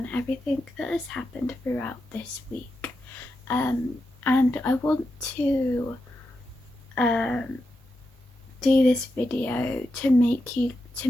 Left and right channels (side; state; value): both; normal; correlation 0.87